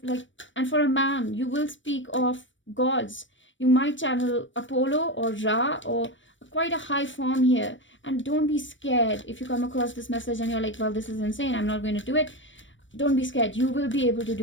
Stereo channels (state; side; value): late; right; 0.55 ms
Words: and for a man, you will speak of gods. You might channel Apollo or Ra or quite a high form here. And don't be scared if you come across this message and you're like, well, this is insane, I'm not going to do it. Don't be scared. You will be able to